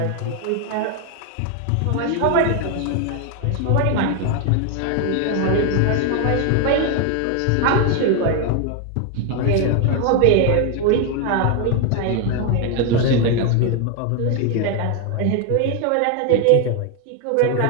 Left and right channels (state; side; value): different; both; correlation 0.01